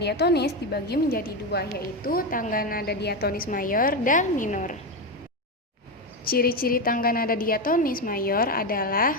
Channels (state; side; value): normal; both; correlation 0.12